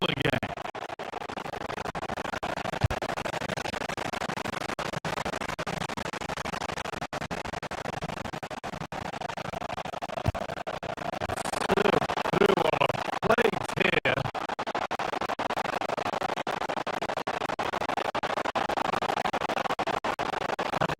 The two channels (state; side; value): identical; both; correlation 1.00